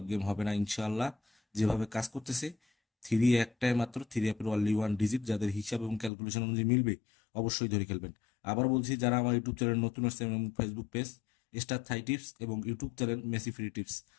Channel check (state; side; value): drops out; right; at 6.1 s